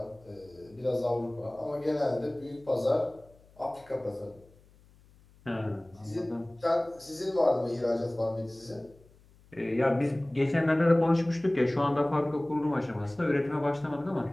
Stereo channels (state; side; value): noise; left; hum, 28 dB below the sound